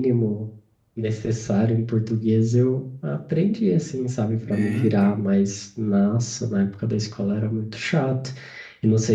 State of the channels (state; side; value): identical; both; correlation 1.00